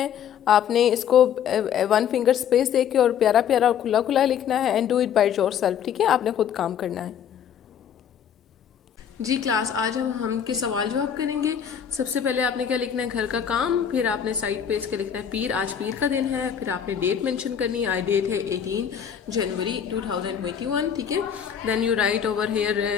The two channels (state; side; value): quieter; right; 8.5 dB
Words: آپ نے اس کو 1 فنگر اسپیس دے کے اور پیارا پیارا اور کھلا کھلا لکھنا ہے. And do it by your self. ٹھیک ہے، آپ نے خود کام کرنا ہے. جی کلاس آج ہم کے سوال جواب کریں گے. سب سے پہلے آپ نے کیا لکھنا ہے؟ گھر کا کام. پھر آپ نے سائڈ پہ اس کے لکھنا ہے پیر. آج پیر کا دن ہے. پھر آپ نے ڈیٹ مینشن کرنی ہے. ڈیٹ ہے 18 جنوری 2021. ٹھیک ہے. Then you write over here